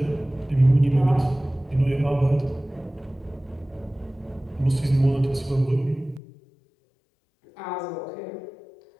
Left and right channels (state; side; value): drops out; right; at 6.2 s